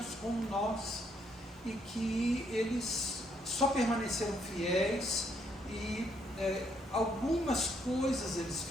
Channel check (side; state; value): both; normal; correlation 0.72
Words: como nós, e que eles só permaneceram fiéis, e algumas coisas eles